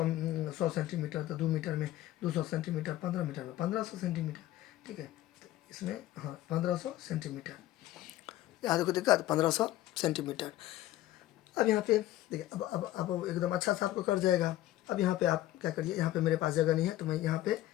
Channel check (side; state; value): right; quieter; 14.7 dB